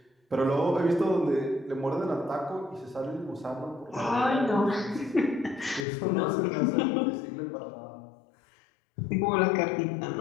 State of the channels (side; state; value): right; drops out; at 5.9 s